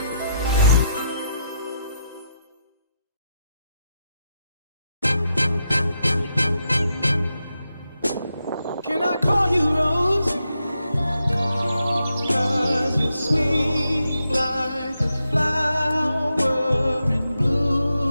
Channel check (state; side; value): inverted; both; correlation -0.83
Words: I call you Rose? 'Cause you're sweet like a flower in